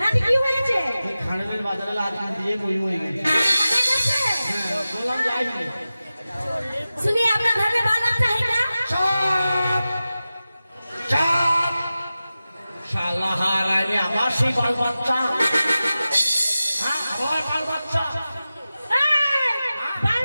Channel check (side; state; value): both; inverted; correlation -0.95